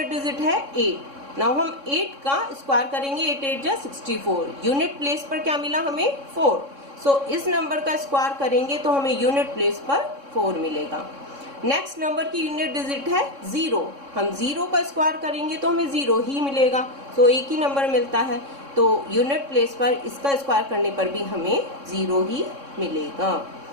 डिजिट है 8। नाउ हम 8 का स्क्वायर करेंगे। 8 8 जा 64, यूनिट प्लेस पर क्या मिला हमें 4। सो इस नंबर का स्क्वायर करेंगे तो हमें यूनिट प्लेस पर 4 मिलेगा। नेक्स्ट नंबर की यूनिट डिजिट है 0, हम 0 का स्क्वायर करेंगे तो हमें 0 ही मिलेगा। सो एक ही नंबर मिलता है, तो यूनिट प्लेस पर इसका स्क्वायर करने पर भी हमें 0 ही मिलेगा।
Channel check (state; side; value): late; left; 3.6 ms